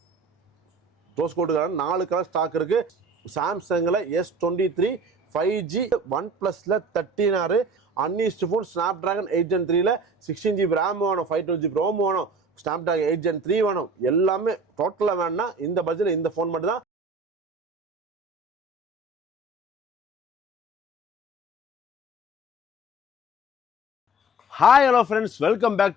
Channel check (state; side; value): normal; both; correlation 0.42